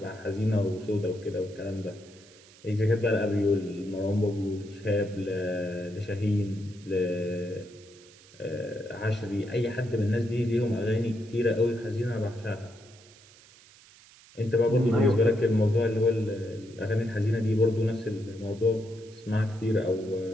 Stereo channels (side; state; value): right; noise; hiss, 24 dB below the sound